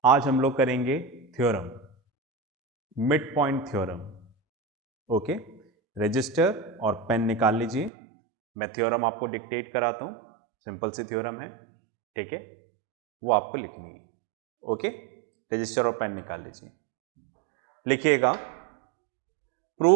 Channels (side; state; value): left; drops out; at 7.9 s